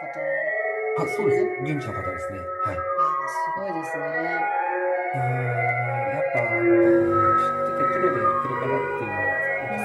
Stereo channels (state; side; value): identical; both; correlation 1.00